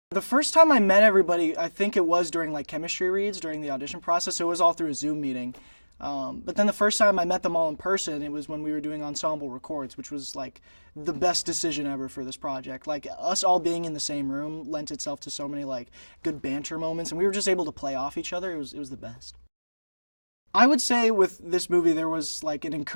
The first time I met everybody, I think it was during like chemistry reads during the audition process. So it was all through a Zoom meeting. But then the first time I met them all in person, it was when we were doing ensemble records, which was like the best decision ever for this project. Like, us all being in the same room lent itself to so many like good banter moments, and we were just able to play off each other. It was the best. I would say with this movie there was like an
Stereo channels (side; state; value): both; inverted; correlation -1.00